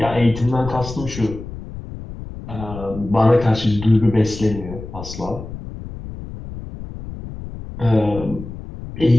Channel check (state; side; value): noise; left; rumble, 11 dB below the sound